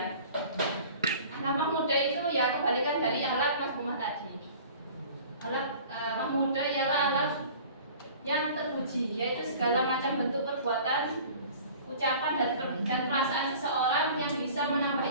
Akhlak mahmudah itu ya kebalikan dari akhlak mazmumah tadi. Akhlak mahmudah ialah akhlak yang terpuji, yaitu segala macam bentuk perbuatan, ucapan dan perasaan seseorang yang bisa menambah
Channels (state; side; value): inverted; both; correlation -0.45